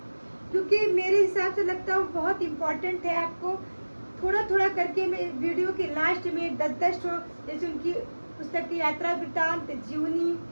क्योंकि मेरे हिसाब से लगता है वो बहुत इम्पोर्टेंट है। आपको थोड़ा थोड़ा करके मैं वीडियो के लास्ट में 10-10 जैसे उनकी पुस्तक की यात्रा वृत्तांत, जीवनी,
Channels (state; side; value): inverted; both; correlation -1.00